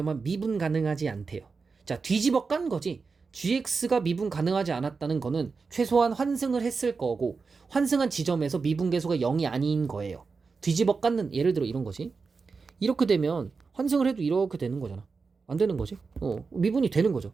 미분 가능하지 않대요. 자, 뒤집어 깐 거지. gx가 미분 가능하지 않았다는 거는 최소한 환승을 했을 거고 환승한 지점에서 미분 계수가 0이 아닌 거예요. 뒤집어 깠는 예를 들어 이런 거지. 이렇게 되면 환승을 해도 이렇게 되는 거잖아. 안 되는 거지. 미분이 되는 거죠.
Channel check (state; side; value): quieter; left; 4.7 dB